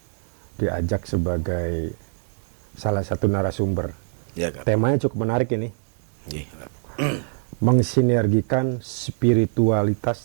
diajak sebagai salah satu narasumber. Ya, Kap. Temanya cukup menarik ini. Mensinergikan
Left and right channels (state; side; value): silent; left; digital silence